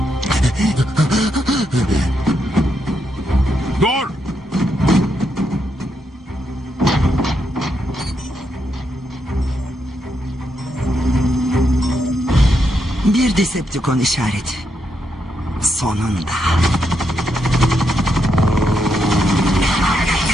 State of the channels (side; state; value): both; normal; correlation 0.81